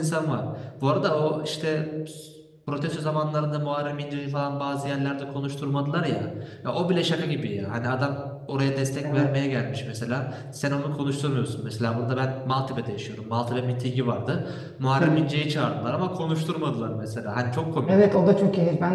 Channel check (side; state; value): both; identical; correlation 1.00